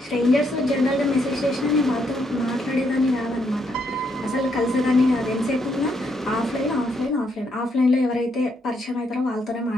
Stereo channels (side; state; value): both; normal; correlation 0.75